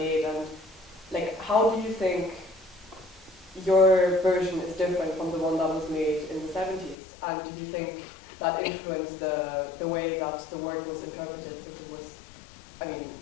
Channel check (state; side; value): drops out; right; at 7.0 s